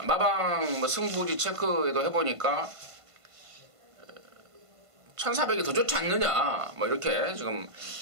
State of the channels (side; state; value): left; late; 1.5 ms